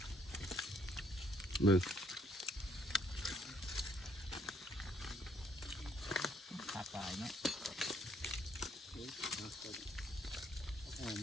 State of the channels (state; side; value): normal; both; correlation 0.68